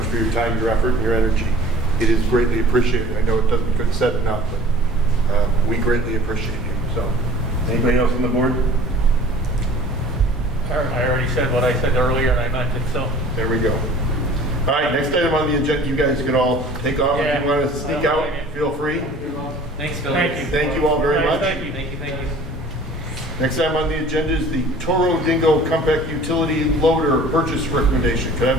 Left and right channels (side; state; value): both; normal; correlation 0.47